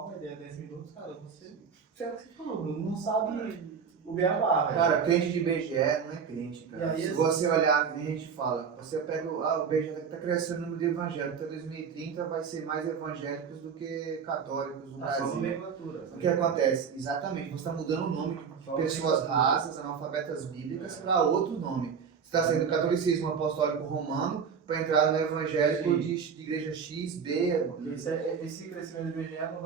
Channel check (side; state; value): left; quieter; 6.5 dB